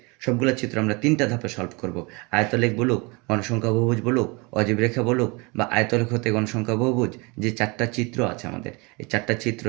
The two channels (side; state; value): left; quieter; 27.9 dB